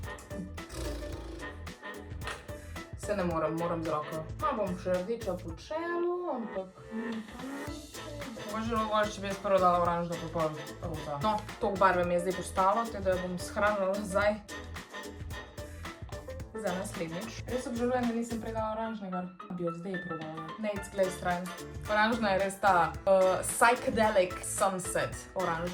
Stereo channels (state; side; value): identical; both; correlation 1.00